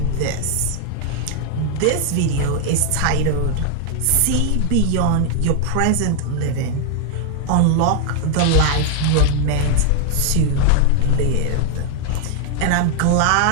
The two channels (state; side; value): different; both; correlation 0.00